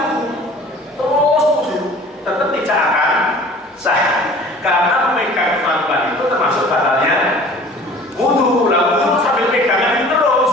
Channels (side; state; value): both; normal; correlation 0.46